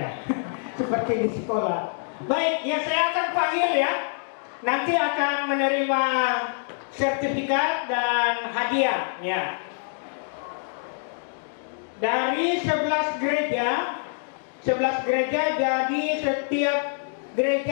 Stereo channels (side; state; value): right; silent; digital silence